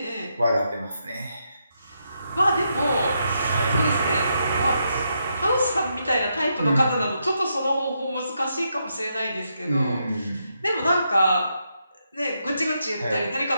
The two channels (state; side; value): inverted; both; correlation -0.81